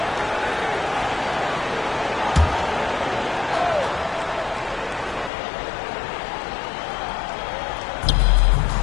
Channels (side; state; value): right; drops out; at 5.3 s